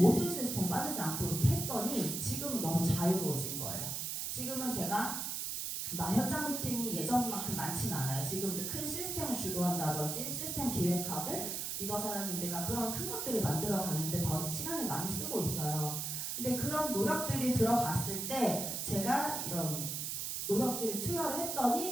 시스템 빠지지 않고 이렇게 했더니 지금은 너무 자유로워진 거예요. 지금은 제가 현장 미팅이 예전만큼 많지는 않아요. 지금 이제 큰 시스템을 주도한다든지 시스템 기획학을 리더 사장님들과 그런 큰 것들을 만들어 가는데 더 시간을 많이 쓰고 있어요. 근데 그런 노력들이 들어갔을 때 제가 이런 노력들을 투여를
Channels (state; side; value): noise; right; hiss, 3 dB below the sound